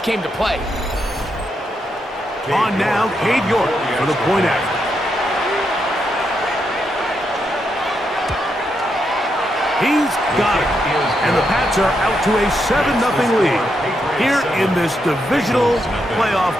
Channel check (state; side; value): normal; both; correlation 0.81